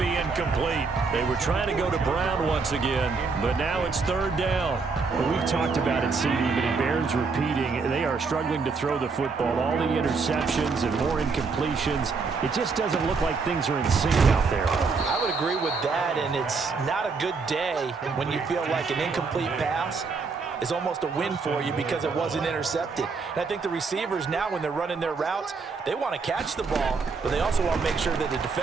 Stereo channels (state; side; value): quieter; left; 4.6 dB